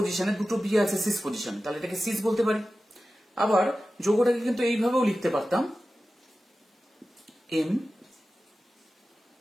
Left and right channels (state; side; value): normal; both; correlation 0.94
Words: দুটো বি আছে সিস পজিশনে, তাহলে এটাকে সিস বলতে পারি। আবার যৌগটাকে কিন্তু এইভাবেও লিখতে পারতাম, এম